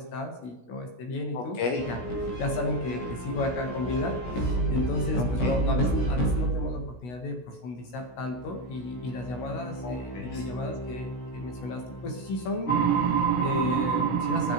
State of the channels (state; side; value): late; right; 16 ms